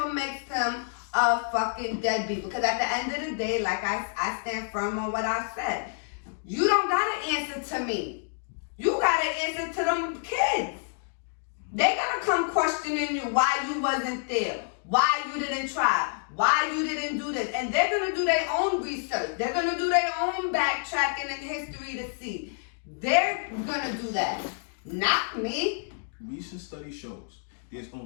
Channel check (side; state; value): right; silent; digital silence